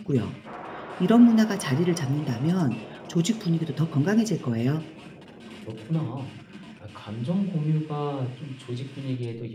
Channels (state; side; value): identical; both; correlation 1.00